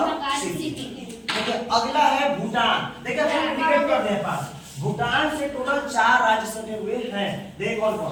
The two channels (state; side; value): identical; both; correlation 1.00